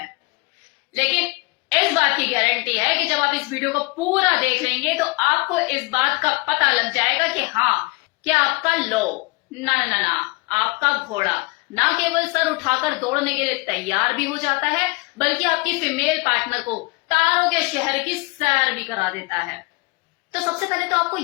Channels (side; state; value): right; quieter; 27.1 dB